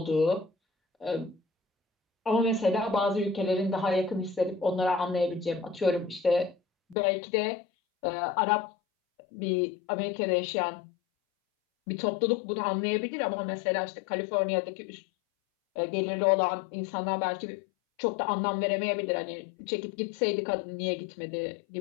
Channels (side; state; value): right; drops out; at 7.0 s